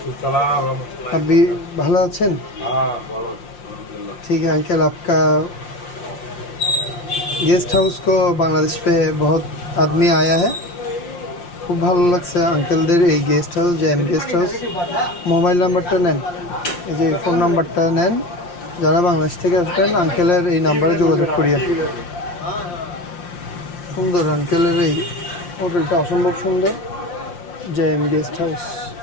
सलाम रहमतुल्लाह। अभी ভালো আছেন? हाँ बोलो अल्हम्दुलिल्लाह। ठीक है अंकल, आपका गेस्ट हाउस को बांग्लादेश पे बहुत आदमी आया है। খুব ভালো লাগছে আঙ্কেলদের এই guest house, JM guest house. Mobile নাম্বারটা নেন, এই যে ফোন নাম্বারটা নেন। যারা বাংলাদেশ থেকে আসবেন আঙ্কেলের এই নাম্বারে যোগাযোগ করিয়ে। সুন্দর আঙ্কেলের এই হোটেলটা, অসম্ভব সুন্দর। জেএম গেস্ট হাউস,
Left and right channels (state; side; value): late; right; 5.7 ms